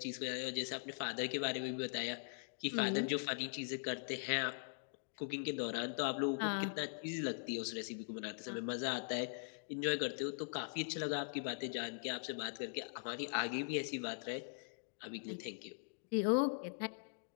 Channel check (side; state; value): right; silent; digital silence